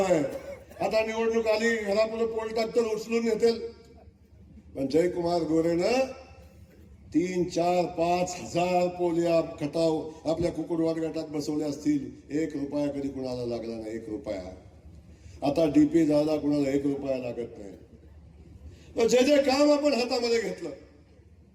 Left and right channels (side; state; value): both; identical; correlation 1.00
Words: आता निवडणूक आली, घरापुढे पोल टाकतं, उचलून येतील. पण जयकुमार गोरेनं 3-4-5 हजार पोल या खटाव आपल्या कुकुडवाड गटात बसवले असतील. 1 रुपया कधी कुणाला लागला नाही, 1 रुपया. आता डीपी जायला कुणाला 1 रुपया लागत नाही. तर जे जे काम आपण हातामध्ये घेतलं,